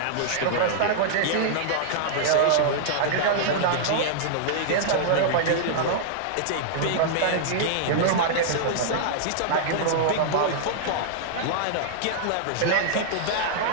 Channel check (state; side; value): different; both; correlation -0.02